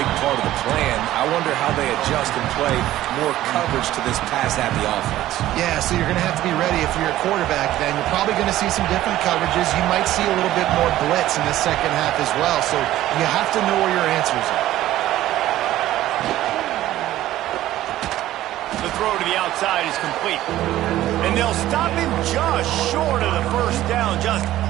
part of the plan. I wonder how they adjust and play more coverage to this pass-happy offense. Yeah, so you're going to have to be ready if you're a quarterback then. You're probably going to see some different coverages. You might see a little bit more blitz in the second half as well. So you have to know where your answers are. The throw to the outside is complete. And they'll stop him just short of the first down, just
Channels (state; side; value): quieter; left; 14.3 dB